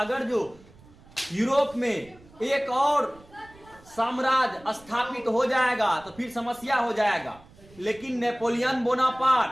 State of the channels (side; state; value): right; noise; rumble, 24 dB below the sound